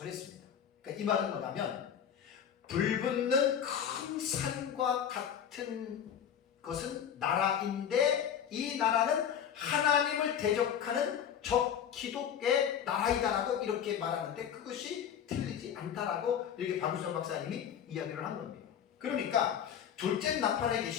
했습니다. 그러니까 이 말은 뭐냐면, 불붙는 큰 산과 같은 것은 나라인데, 이 나라는 하나님을 대적하는 적기독의 나라이다라고 이렇게 말하는데, 그것이 틀리지 않다라고 이렇게 박유선 박사님이 이야기를 한 겁니다. 그러니까 둘째 나팔의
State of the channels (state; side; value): quieter; right; 8.7 dB